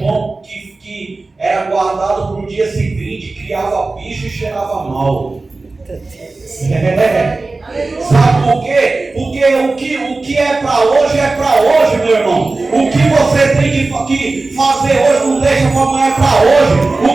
que era guardado para o dia seguinte criava bicho e cheirava mal. Sabe por quê? Porque o que é para hoje, meu irmão. O que você tem que fazer hoje não deixa para amanhã, é para hoje.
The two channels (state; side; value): quieter; left; 3.5 dB